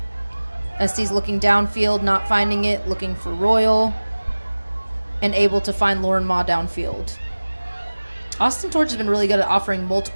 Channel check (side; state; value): both; inverted; correlation -1.00